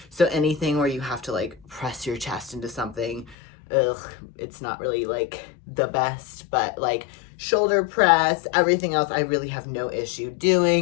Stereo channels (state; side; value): drops out; right; at 3.4 s